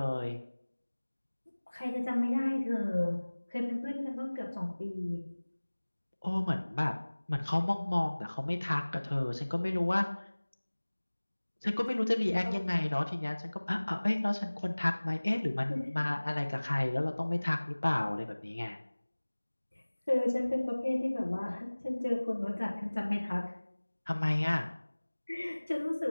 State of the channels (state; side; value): inverted; both; correlation -1.00